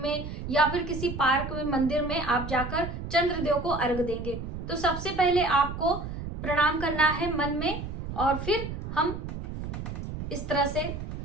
में या फिर किसी पार्क में, मंदिर में आप जाकर चंद्रदेव को अर्घ देंगे। तो सबसे पहले आपको प्रणाम करना है मन में और फिर हम इस तरह से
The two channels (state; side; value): noise; right; rumble, 7 dB below the sound